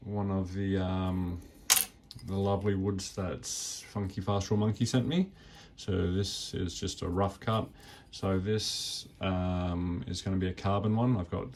one of the lovely woods that Funky Fast Raw Monkey sent me. So this is just a rough cut. So this is going to be a carbon one. I've got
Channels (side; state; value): both; identical; correlation 1.00